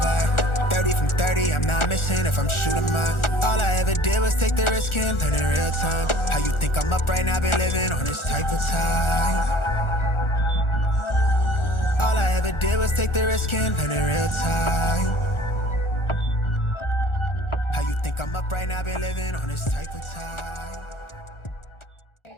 30 from 30, I'm not missing if I'm shooting mine. All I ever did was take the risk and learn in real time. How you think I'm up right now, been living on this type of time. All I ever did was take the risk and learn in real time. How you think I'm up right now, been living on this type of time.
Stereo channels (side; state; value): right; late; 1.4 ms